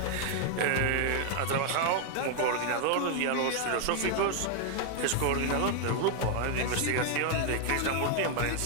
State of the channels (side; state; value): both; different; correlation 0.00